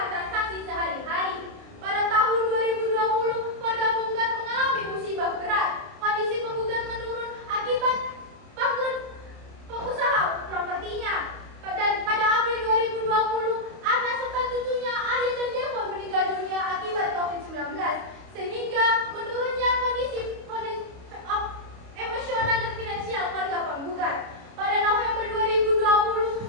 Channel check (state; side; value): late; left; 29 ms